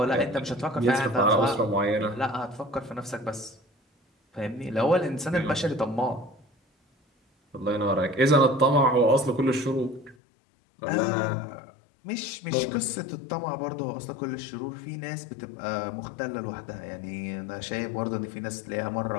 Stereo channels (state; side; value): drops out; right; at 10.2 s